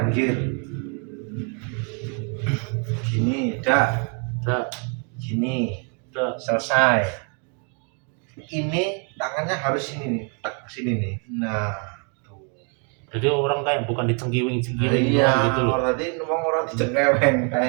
gini dak gini selesai. Ini tangannya harus sini nih, tek sini nih. Nah tuh. Jadi orang kayak bukan dicengkiwing Iya, gitu loh. berarti wong ora dicengkeweng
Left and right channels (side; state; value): left; quieter; 39.2 dB